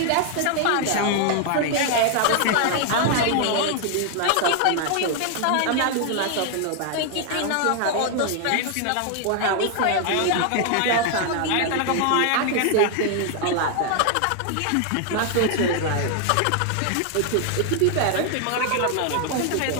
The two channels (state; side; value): different; both; correlation 0.00